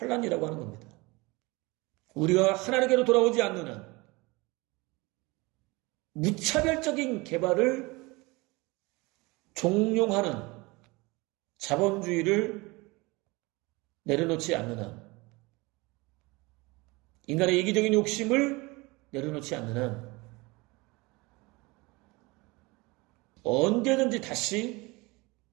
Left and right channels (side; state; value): left; quieter; 24.2 dB